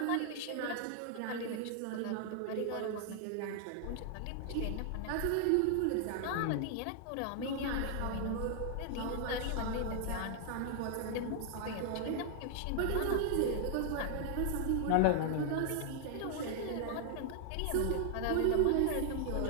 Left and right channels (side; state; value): both; different; correlation 0.00